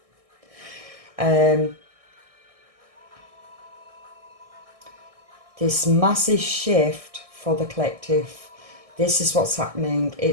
this massive shift for the collective. This is what's happening.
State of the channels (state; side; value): late; left; 1.6 ms